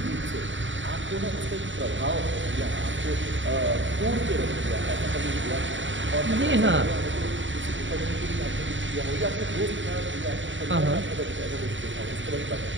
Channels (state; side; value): late; left; 0.55 ms